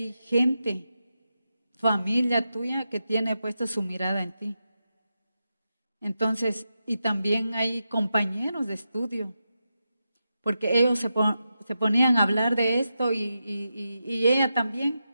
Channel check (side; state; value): both; inverted; correlation -0.88